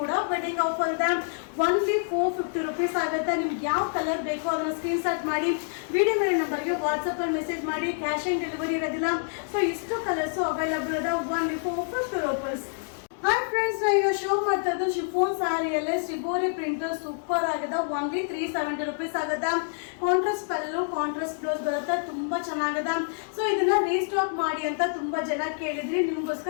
ವೆಡ್ಡಿಂಗ್ ಆಫರ್ ಇದೆ. ಓನ್ಲಿ 450 rupees ಆಗುತ್ತೆ. ನಿಮ್ಗೆ ಯಾವ ಕಲರ್ ಬೇಕೋ ಅದನ್ನ ಸ್ಕ್ರೀನ್ ಶಾಟ್ ಮಾಡಿ ವಿಡಿಯೋ ಮೇಲೆ ನಂಬರ್ಗೆ ವಾಟ್ಸಪ್ ಅಲ್ಲಿ ಮೆಸೇಜ್ ಮಾಡಿ. ಕ್ಯಾಶ್ ಆನ್ ಡೆಲಿವರಿ ಇರೋದಿಲ್ಲ. ಸೊ ಇಷ್ಟು ಕಲರ್ಸ್ ಅವೈಲಬಲ್ ಇದೆ, ಓನ್ಲಿ 450 rupees. ಹಾಯ್ ಫ್ರೆಂಡ್ಸ್, ಈಗ ಶೋ ಮಾಡ್ತಾ ಇದ್ದು ಶಿಫೋನ್ ಸ್ಯಾರಿಯಲ್ಲೇ ಶಿಬೋರಿ ಪ್ರಿಂಟ್ ಸೂಪರ್ ಆಗಿದೆ, ಓನ್ಲಿ 370 rupees ಆಗುತ್ತೆ. ಕಾಂಟ್ರಾಸ್ಟ್ ಪಲ್ಲು, ಕಾಂಟ್ರಾಸ್ಟ್ ಬ್ಲೌಸ್ ಬರುತ್ತೆ, ತುಂಬಾ ಚೆನ್ನಾಗಿದೆ. ಸೊ ಇದನ್ನ ರೀಸ್ಟಾಕ್ ಮಾಡಿ ಅಂತ ತುಂಬಾ ಜನ ಕೇಳಿದ್ರಿ,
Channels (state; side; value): silent; right; digital silence